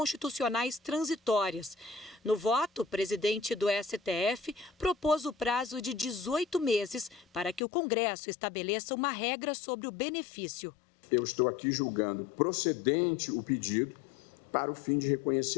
transitórias. No voto, o presidente do STF propôs o prazo de 18 meses para que o Congresso estabeleça uma regra sobre o benefício. Eu estou aqui julgando procedente o pedido para o fim de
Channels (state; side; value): drops out; right; at 7.6 s